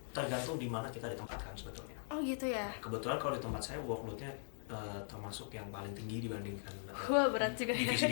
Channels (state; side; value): silent; right; digital silence